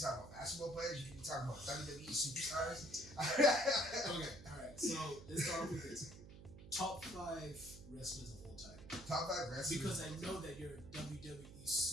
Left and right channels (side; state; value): right; noise; hum, 16 dB below the sound